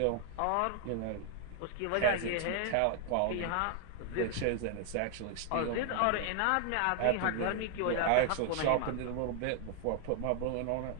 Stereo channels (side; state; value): both; different; correlation 0.00